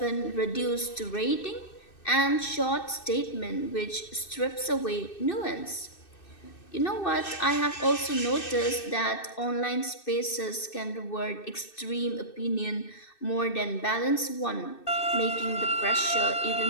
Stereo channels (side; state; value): right; late; 2.6 ms